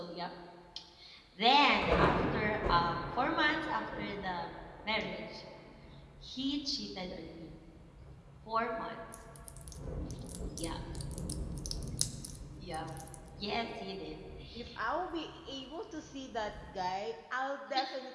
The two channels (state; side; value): identical; both; correlation 1.00